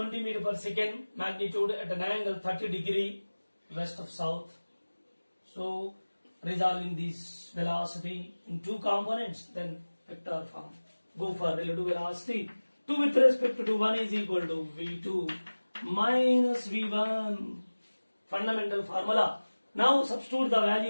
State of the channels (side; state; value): both; inverted; correlation -1.00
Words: meter per second, magnitude at an angle 30 degree west of south. So resolving this velocity in two components, then vector form. Go for relative velocity. 2 with respect to 1 is equal to v2 minus v1. Fundamental formula. Now substitute the